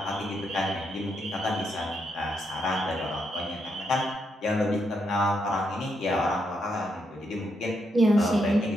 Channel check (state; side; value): normal; both; correlation 0.80